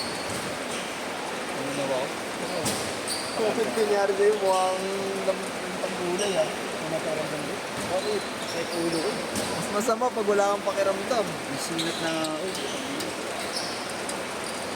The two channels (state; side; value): identical; both; correlation 1.00